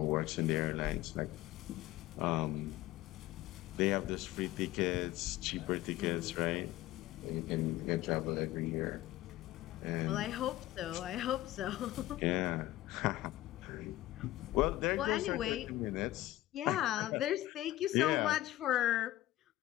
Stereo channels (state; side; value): quieter; right; 15.8 dB